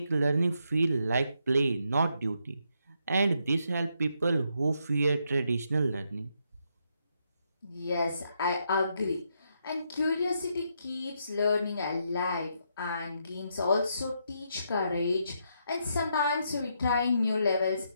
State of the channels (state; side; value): inverted; both; correlation -0.78